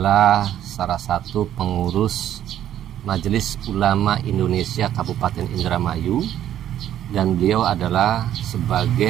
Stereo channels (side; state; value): left; quieter; 11.3 dB